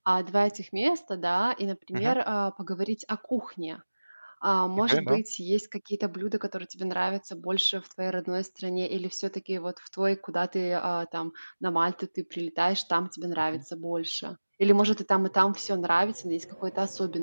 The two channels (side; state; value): both; inverted; correlation -1.00